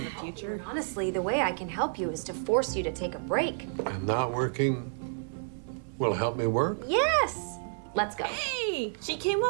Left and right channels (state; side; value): silent; left; 58 dB below the other